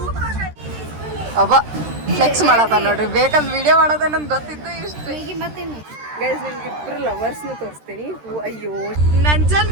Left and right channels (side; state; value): left; late; 13 ms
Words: ಅಬ್ಬ ಫ್ಲೆಕ್ಸ್ ಮಾಡತ್ತ ನೋಡ್ರಿ, ಬೇಕಂದ್ ವಿಡಿಯೋ ಮಾಡೋದ ನನ್ಗೆ ಗೊತ್ತಿತ್ತು ಇಷ್ಟು. ಗೈಸ್ ನಿಮ್ಗೆ ಇಬ್ರು ಲವರ್ಸ್ನು ತೋರಿಸ್ತೀನಿ. ಅಯ್ಯೋ